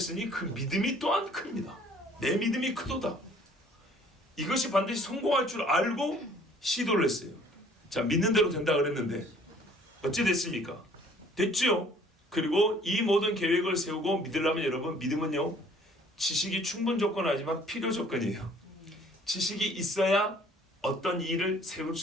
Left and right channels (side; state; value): both; normal; correlation 0.56